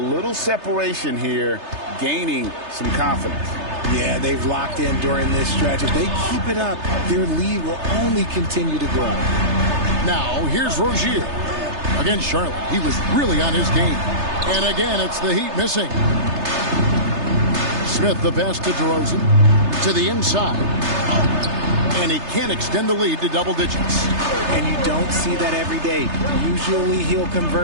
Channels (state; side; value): late; left; 3.3 ms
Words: separation here, gaining some confidence. Yeah, they've locked in during this stretch. If they keep it up, their lead will only continue to grow. Now, here's Rozier. Against Charlotte, he was really on his game. And again, it's the Heat missing. Smith the pass to DeRozan. To the inside. And he can't extend the lead to double digits. And you don't see that every day. Usually he'll